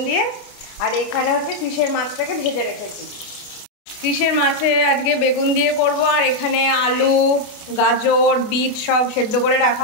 দিয়ে। আর এখানে হচ্ছে ফিশের মাছটাকে ভেজে রেখেছি। ফিশের মাছে আজকে বেগুন দিয়ে করব, আর এখানে আলু, গাজর, বিট সব সেদ্ধ করে রাখা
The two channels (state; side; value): late; right; 28 ms